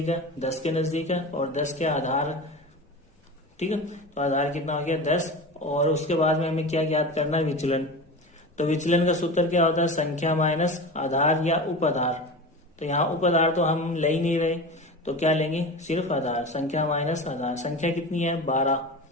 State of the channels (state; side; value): normal; both; correlation 0.30